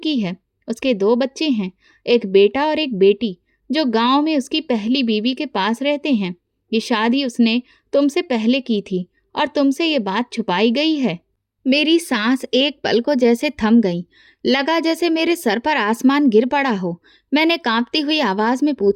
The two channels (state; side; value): identical; both; correlation 1.00